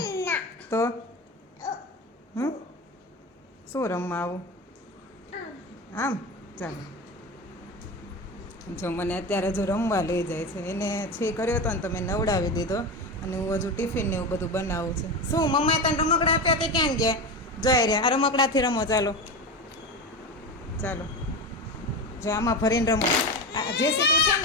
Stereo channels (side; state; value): both; normal; correlation 0.23